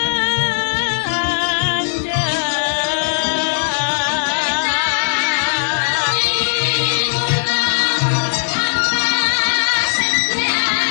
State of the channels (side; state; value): right; silent; digital silence